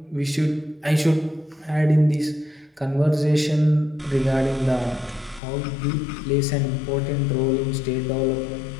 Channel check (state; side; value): drops out; right; at 5.4 s